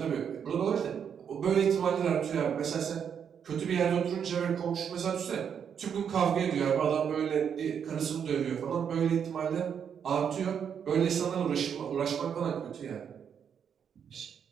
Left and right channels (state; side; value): quieter; left; 7.7 dB